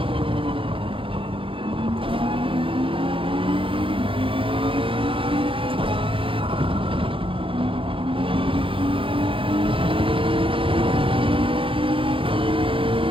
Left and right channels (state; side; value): late; left; 0.25 ms